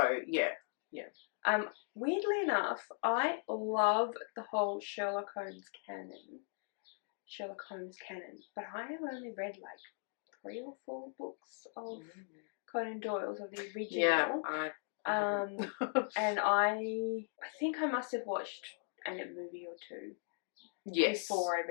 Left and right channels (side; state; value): right; silent; 52 dB below the other